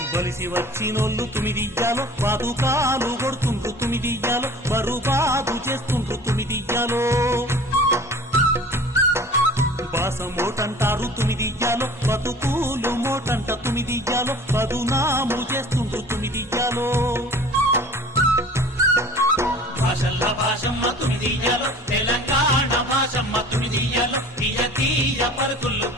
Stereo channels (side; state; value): both; normal; correlation 0.44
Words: బలిసి వచ్చినోళ్ళు తుమిదియ్యాలో పాదుకాలు కొడుతుండ్రు తుమిదియ్యాలో బరుబాదు చేస్తుండ్రు తుమిదియ్యాలో బాస మోటంటారు తుమిదియ్యాలో బతుకులు మోటంట తుమిదియ్యాలో పదునాము చేస్తుండ్రు తుమిదియ్యాలో భాషల్ల భాషమ్మ తుమిదియాలో తెలంగాణ భాషమ్మ తుమిదియాలో తీయ తీయ పలుకులు